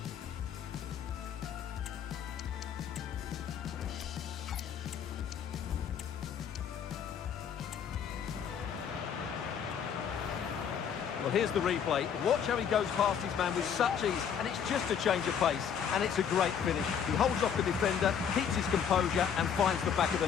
Well, here's the replay. Watch how he goes past his man with such ease, and it's just a change of pace, and it's a great finish. He holds off the defender, keeps his composure, and finds the back of the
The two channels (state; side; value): quieter; right; 7.8 dB